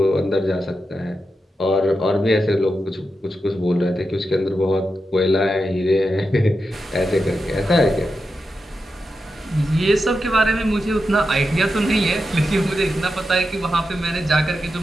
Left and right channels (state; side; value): normal; both; correlation 0.88